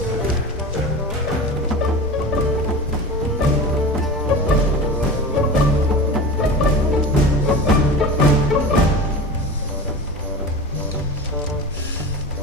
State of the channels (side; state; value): both; normal; correlation 0.31